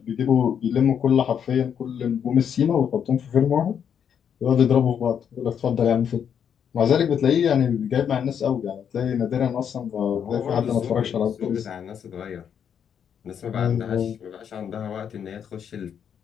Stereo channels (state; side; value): quieter; right; 8.1 dB